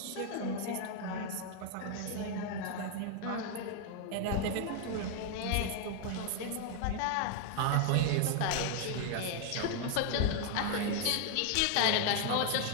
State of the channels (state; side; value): different; both; correlation 0.00